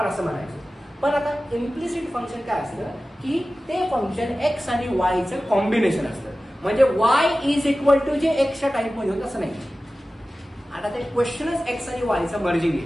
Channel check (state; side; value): normal; both; correlation 0.96